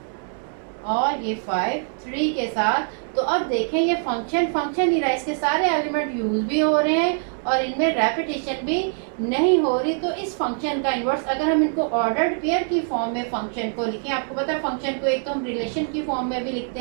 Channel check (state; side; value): silent; left; 61 dB below the other